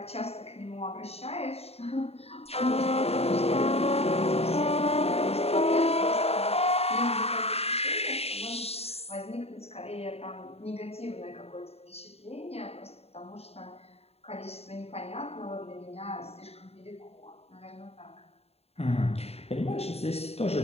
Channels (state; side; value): late; right; 0.29 ms